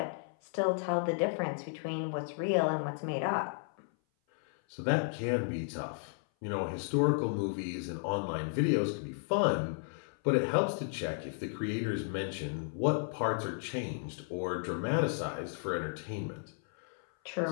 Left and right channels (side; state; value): right; silent; 55 dB below the other